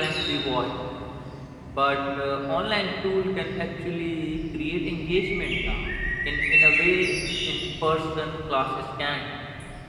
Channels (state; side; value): identical; both; correlation 1.00